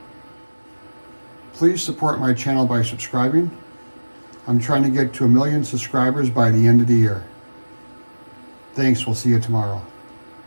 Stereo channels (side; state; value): both; inverted; correlation -1.00